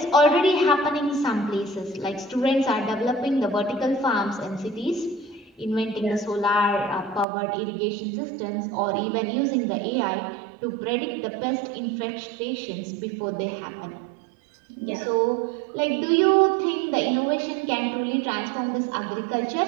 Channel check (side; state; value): left; drops out; at 7.2 s